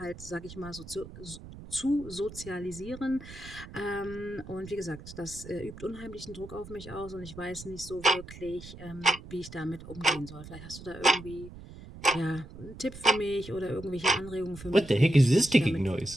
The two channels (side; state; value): right; noise; rumble, 15 dB below the sound